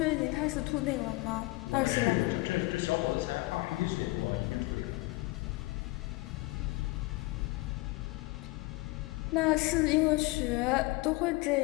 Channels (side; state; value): right; quieter; 22.7 dB